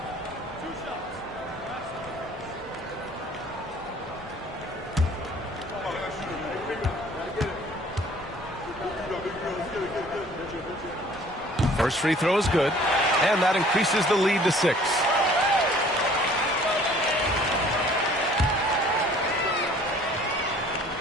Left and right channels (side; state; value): both; normal; correlation 0.53